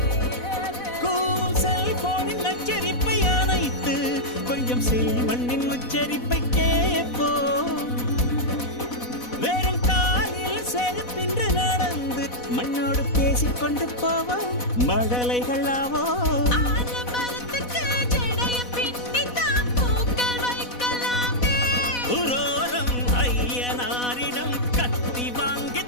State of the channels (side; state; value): right; late; 4.1 ms